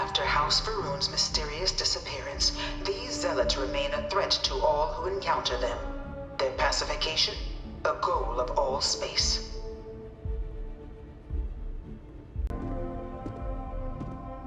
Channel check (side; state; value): both; identical; correlation 1.00